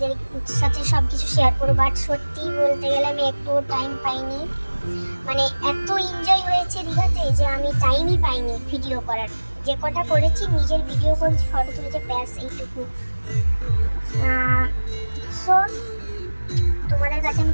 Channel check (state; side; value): inverted; both; correlation -1.00